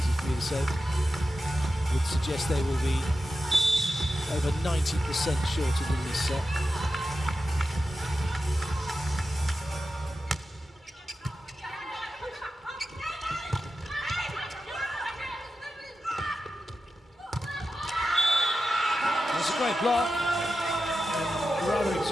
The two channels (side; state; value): both; normal; correlation 0.92